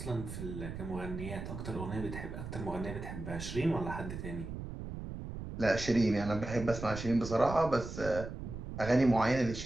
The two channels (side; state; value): right; noise; rumble, 8 dB below the sound